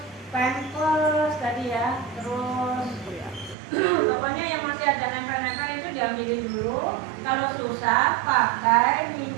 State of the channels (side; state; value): left; drops out; at 3.6 s